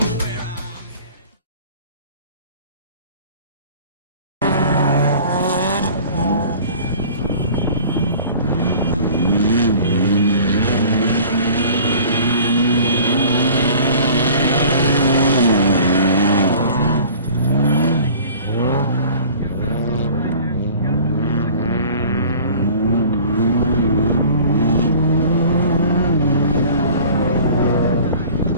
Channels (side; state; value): both; inverted; correlation -0.45